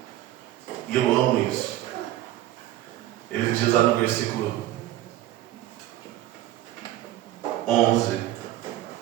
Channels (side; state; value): left; quieter; 14.1 dB